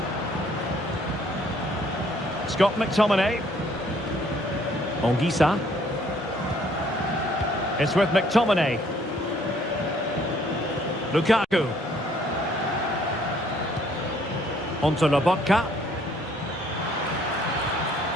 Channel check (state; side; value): normal; both; correlation 0.63